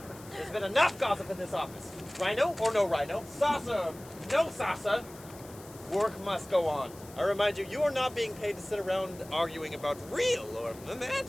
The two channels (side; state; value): left; noise; hiss, 20 dB below the sound